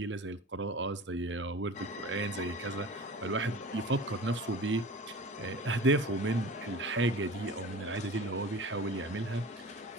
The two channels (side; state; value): both; normal; correlation 0.38